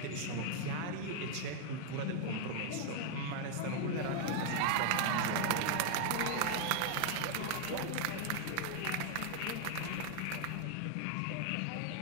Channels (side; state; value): both; different; correlation 0.00